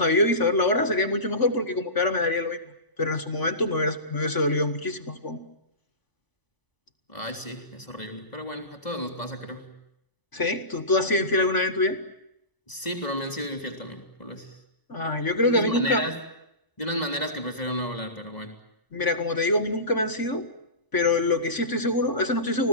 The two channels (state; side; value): late; right; 1.0 ms